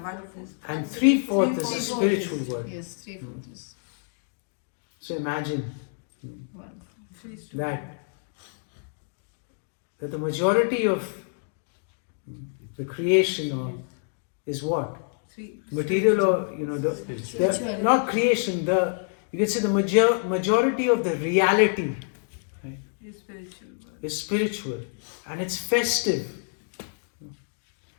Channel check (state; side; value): silent; right; 60 dB below the other